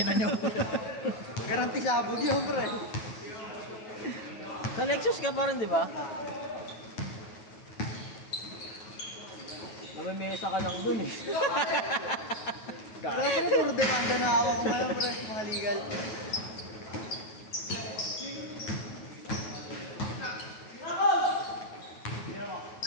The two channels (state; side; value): late; right; 9.3 ms